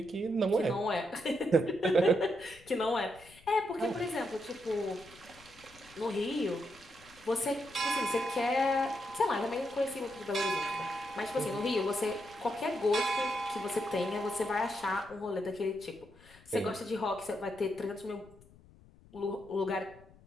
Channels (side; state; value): left; noise; rumble, 25 dB below the sound